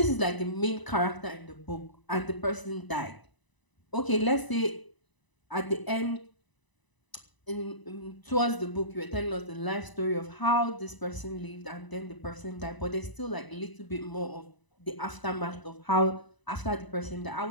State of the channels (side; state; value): right; late; 1.0 ms